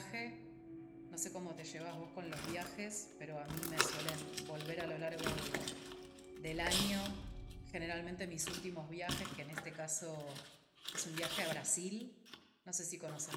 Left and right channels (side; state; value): both; identical; correlation 1.00